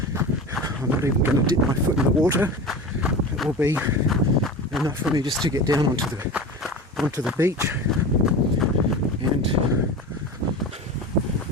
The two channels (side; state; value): both; normal; correlation 0.30